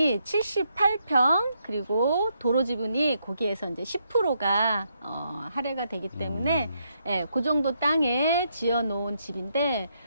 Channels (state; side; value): inverted; both; correlation -0.77